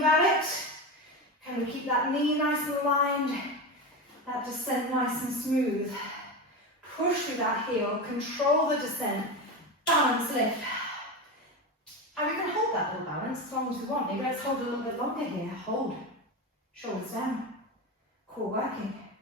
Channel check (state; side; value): normal; both; correlation 0.21